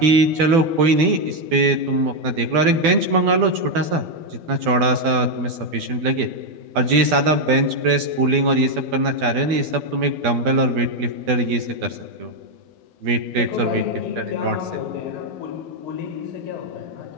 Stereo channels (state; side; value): late; left; 12 ms